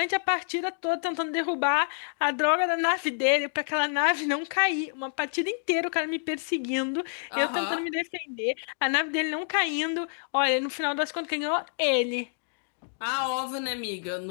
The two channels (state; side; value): silent; right; digital silence